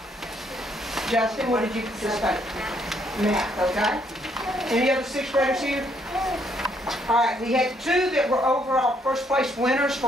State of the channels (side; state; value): both; normal; correlation 0.70